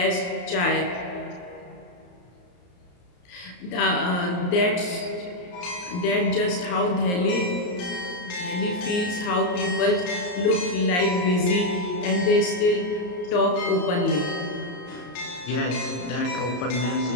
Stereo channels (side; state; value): right; late; 34 ms